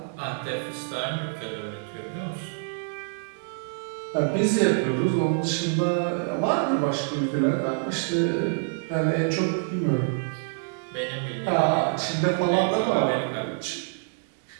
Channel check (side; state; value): left; silent; digital silence